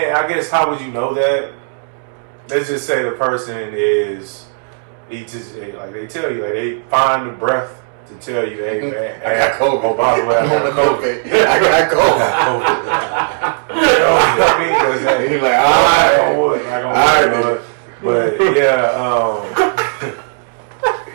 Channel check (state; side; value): silent; left; digital silence